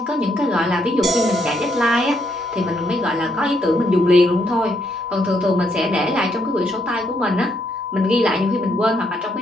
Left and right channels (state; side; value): normal; both; correlation 0.75